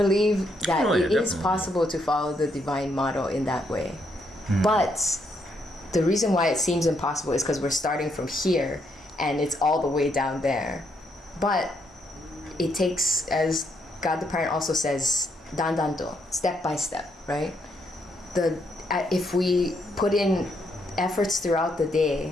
that it is definitely possible to follow the divine model in that way. But the reason why it seems impossible is because we're starting from here and it's all the way down there. But it takes, as God the Parent also says, dandanto, step by step, right? If we put in efforts throughout the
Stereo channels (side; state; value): both; normal; correlation 0.75